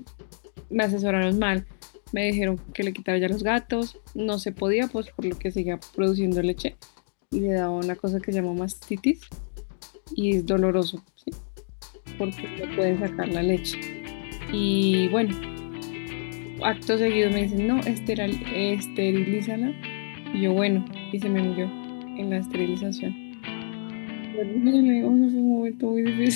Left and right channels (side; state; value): right; silent; digital silence